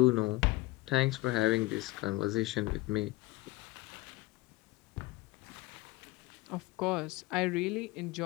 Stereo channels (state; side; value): quieter; right; 19.9 dB